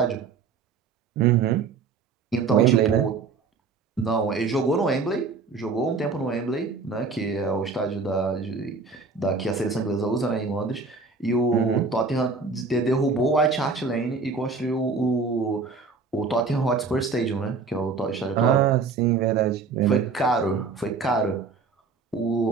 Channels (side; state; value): left; quieter; 4.6 dB